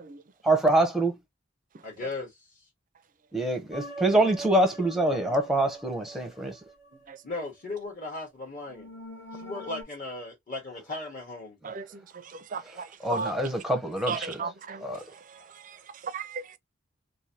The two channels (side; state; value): both; normal; correlation 0.54